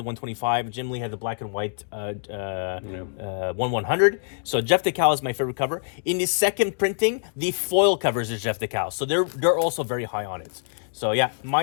125. Jim Lee had the black and white 100. So Jeff DeCal is my favorite cover. In the second printing, the foil covers is Jeff DeCal. So they're also very high on it. So yeah,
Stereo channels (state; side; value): silent; right; digital silence